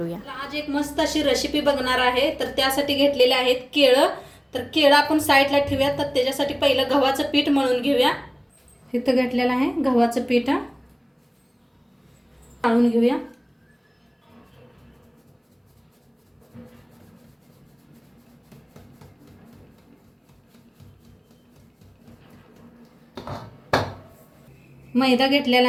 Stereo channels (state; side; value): identical; both; correlation 1.00